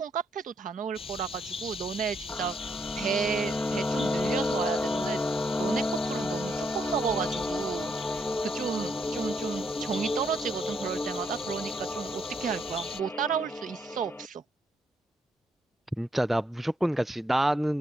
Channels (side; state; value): both; normal; correlation 0.75